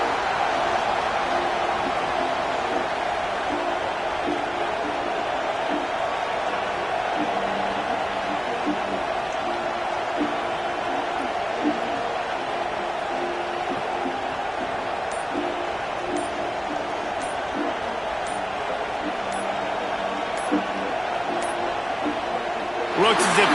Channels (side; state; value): both; identical; correlation 1.00